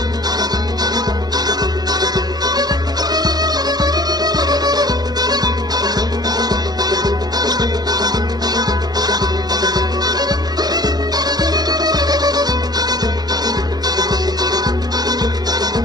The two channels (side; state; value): left; late; 0.19 ms